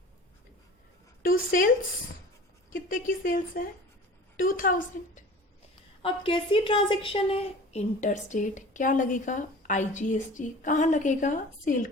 टू सेल्स। कितने की सेल्स है? 2000। अब कैसी ट्रांजैक्शन है? Inter state. क्या लगेगा? IGST। कहाँ लगेगा? सेल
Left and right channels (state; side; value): normal; both; correlation 0.41